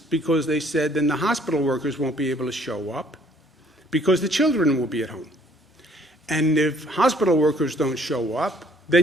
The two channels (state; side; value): normal; both; correlation 0.60